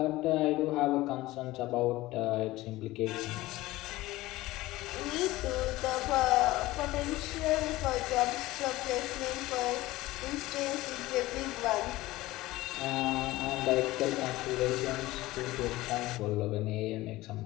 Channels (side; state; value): right; quieter; 18.1 dB